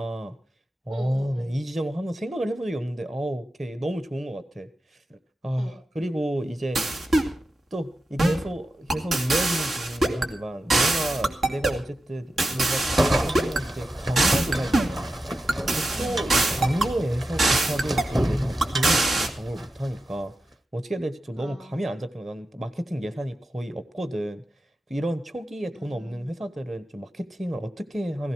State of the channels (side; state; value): both; normal; correlation 0.91